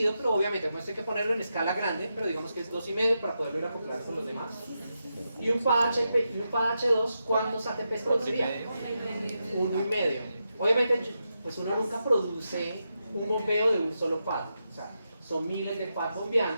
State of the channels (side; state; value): both; inverted; correlation -0.87